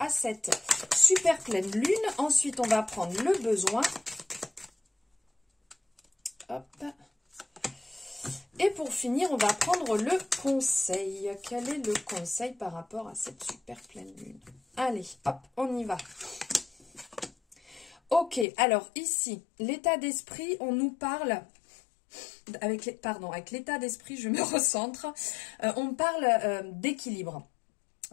cette super pleine lune. Ensuite, on va prendre le besoin. Hop. Et pour finir, on va prendre le conseil. Quel est le conseil par rapport à cette super pleine lune? Allez, hop, on y va. Ok, alors ici, l'état d'esprit, on nous parle... avec l'état d'esprit, je me recentre. On parle d'équilibre.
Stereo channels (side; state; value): right; drops out; at 18.4 s